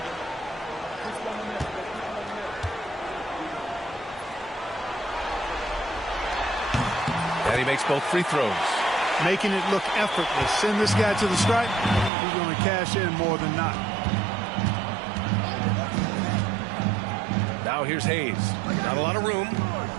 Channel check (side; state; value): left; drops out; at 12.1 s